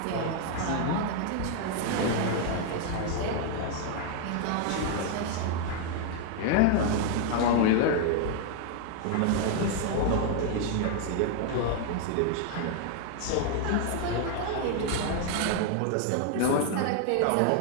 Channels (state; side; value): different; both; correlation 0.00